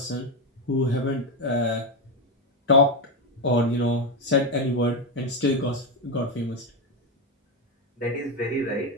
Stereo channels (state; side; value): normal; both; correlation 0.09